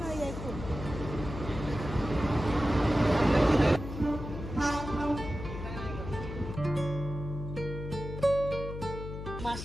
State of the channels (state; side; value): noise; left; hum, 8 dB below the sound